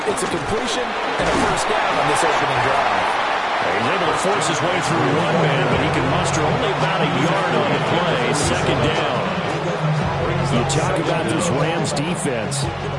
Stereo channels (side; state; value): both; identical; correlation 1.00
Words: it's a completion and a first down on this opening drive. He's able to force his way through one man, but he can muster only about a yard on the play. 2nd down. You talk about this Rams defense.